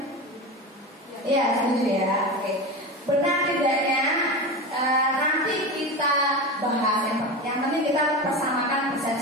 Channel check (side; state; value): both; normal; correlation 0.24